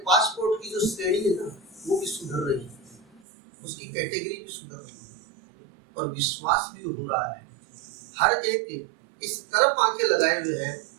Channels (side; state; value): left; drops out; at 3.2 s